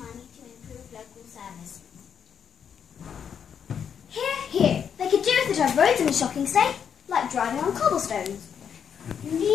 to improve local services. Here. They could do with it have roads in a shocking state, like driving on cobblestones.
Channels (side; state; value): right; quieter; 7.7 dB